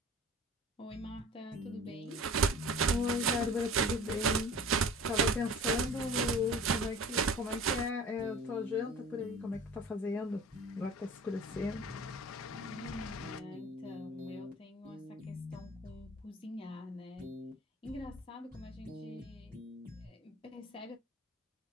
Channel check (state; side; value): normal; both; correlation 0.42